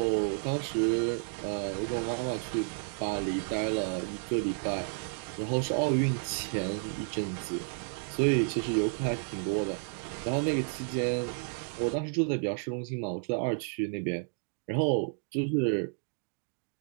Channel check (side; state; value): left; silent; 57 dB below the other